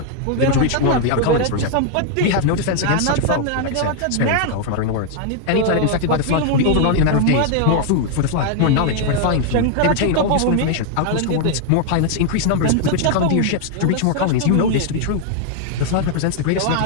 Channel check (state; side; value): different; both; correlation 0.00